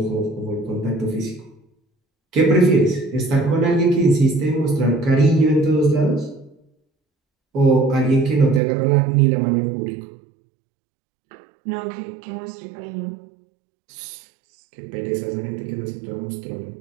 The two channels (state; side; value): drops out; left; at 8.6 s